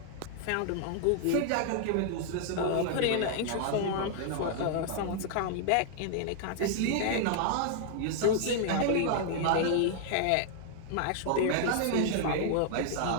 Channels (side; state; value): both; different; correlation -0.01